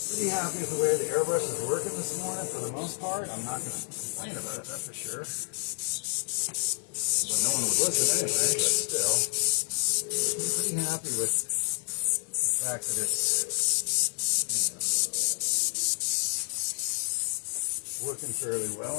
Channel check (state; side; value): silent; right; 57 dB below the other